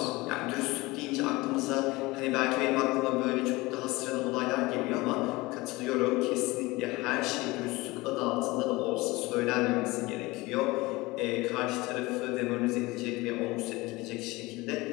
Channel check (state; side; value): quieter; right; 21.8 dB